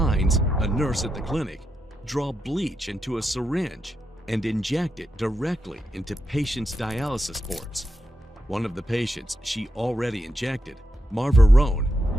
a nurse at the clinic, draw bleach into a syringe and inject it directly into patients' dialysis ports. One of the patients she already injected, Marva Roan,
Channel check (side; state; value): both; normal; correlation 0.85